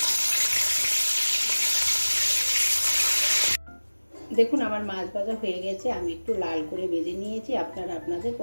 দেখুন আমার মাছ ভাজা হয়ে গেছে। আমি একটু লাল করে ভেজে নিয়েছি। আপনারা আপনাদের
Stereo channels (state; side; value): inverted; both; correlation -1.00